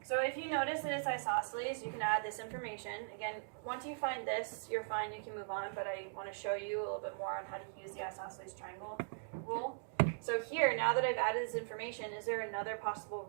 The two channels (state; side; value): silent; left; digital silence